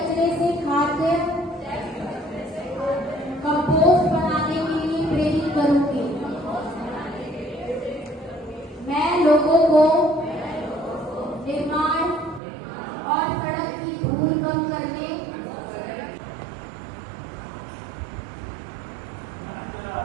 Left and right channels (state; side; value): drops out; left; at 12.4 s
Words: से खाद्य कंपोस्ट बनाने के लिए प्रेरित करूंगी। मैं लोगों को निर्माण और सड़क की धूल कम करने